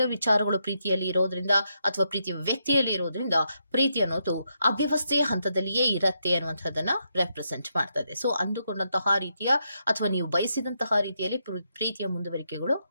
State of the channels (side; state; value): both; inverted; correlation -0.81